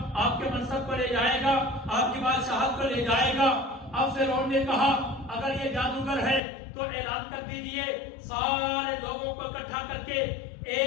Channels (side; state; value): right; drops out; at 6.4 s